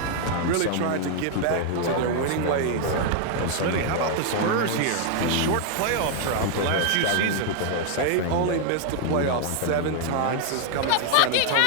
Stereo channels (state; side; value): different; both; correlation 0.00